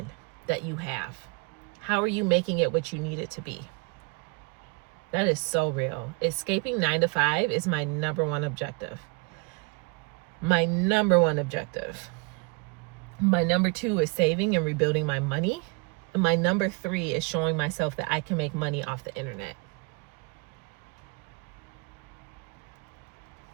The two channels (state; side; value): quieter; left; 31.0 dB